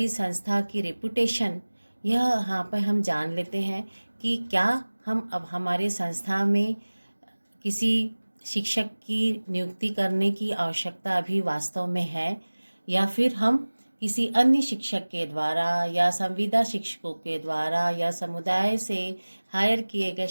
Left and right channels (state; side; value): inverted; both; correlation -1.00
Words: संस्था की रेपुटेशन, यह यहाँ पर हम जान लेते हैं कि क्या हम अब हमारे संस्था में किसी शिक्षक की नियुक्ति करने की आवश्यकता अभी वास्तव में है, या फिर हम किसी अन्य शिक्षक के द्वारा या संविदा शिक्षकों के द्वारा या समुदाय से हायर किए गए